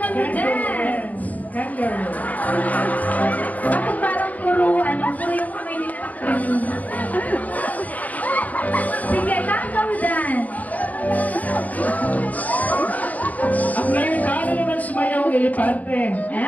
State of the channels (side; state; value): right; late; 0.075 ms